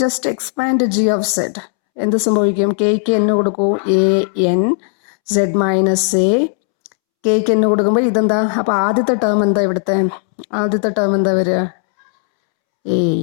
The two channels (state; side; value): silent; right; 69 dB below the other